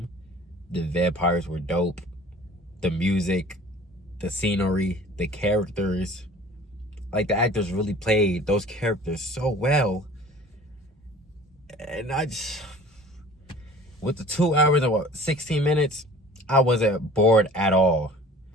The vampires were dope. The music, the scenery, the characters. Like, the actors really played those characters so well. And with the 2 hours and 16 minutes, I wasn't bored at all.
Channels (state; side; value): normal; both; correlation 0.46